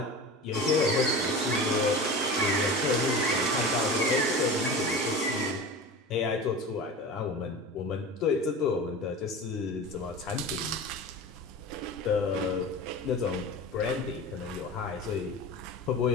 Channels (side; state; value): both; normal; correlation 0.32